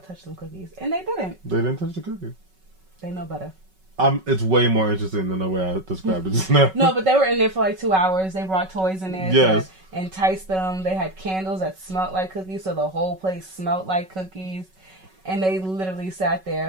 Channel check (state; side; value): late; left; 5.3 ms